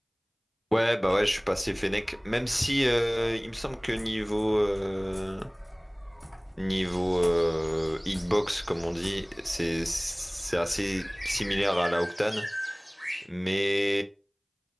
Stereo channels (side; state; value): both; identical; correlation 1.00